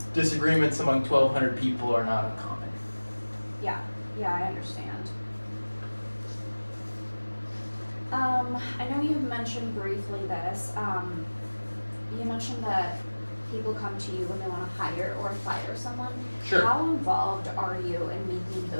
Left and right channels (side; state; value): both; inverted; correlation -1.00